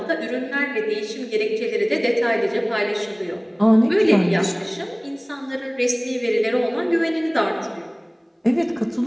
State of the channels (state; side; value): identical; both; correlation 1.00